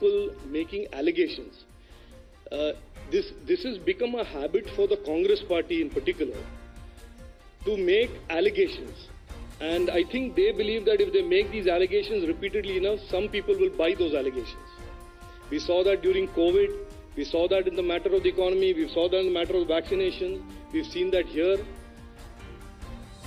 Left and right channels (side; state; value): both; identical; correlation 1.00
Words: making allegations. This has become a habit for the Congress party in particular to make allegations. And I think they believe that if they make these allegations repeatedly enough, some people will buy those allegations. We saw that during COVID. We saw that in the matter of the economy. We saw that in the matter of vaccination. We've seen that here.